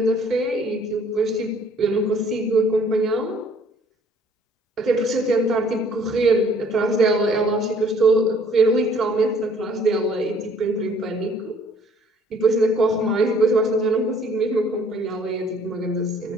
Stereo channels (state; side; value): normal; both; correlation 0.59